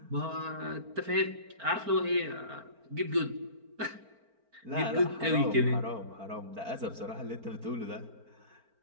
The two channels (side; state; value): left; late; 4.4 ms